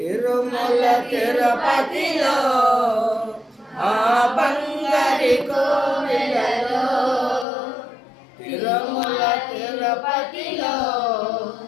తిరుపతిలో ఆ బంగారి కోవిలలో, తిరుమల తిరుపతిలో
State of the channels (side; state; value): right; drops out; at 7.5 s